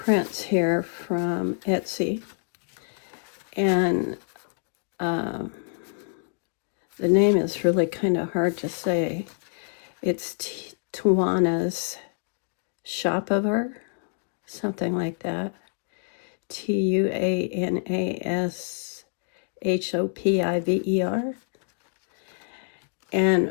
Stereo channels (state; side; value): silent; right; digital silence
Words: here from Etsy, and the name is really kind of hard to say. It's Tuana's Shopiver, something like that. Tuanashoppiver.